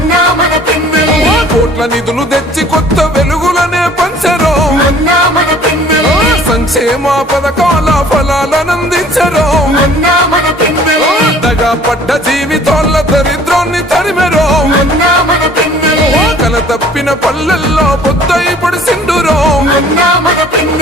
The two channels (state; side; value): normal; both; correlation 0.53